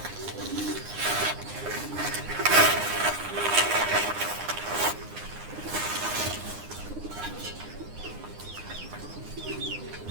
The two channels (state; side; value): late; left; 9.8 ms